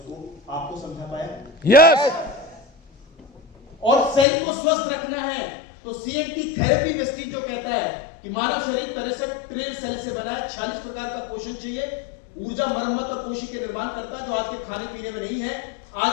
आपको समझा पाया? यस। और सेल को स्वस्थ रखना है तो सीएनटी थेरेपी वेस्टीज जो कहता है कि मानव शरीर 63 ट्रिलियन सेल से बना है, 46 प्रकार का पोषण चाहिए, ऊर्जा, मरम्मत और कोशिका के निर्माण करता है, जो आज के खाने पीने में नहीं है।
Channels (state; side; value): drops out; right; at 4.2 s